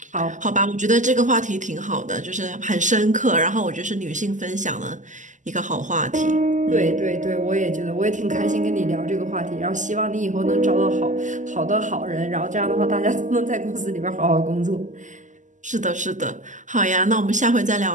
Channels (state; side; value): late; left; 0.36 ms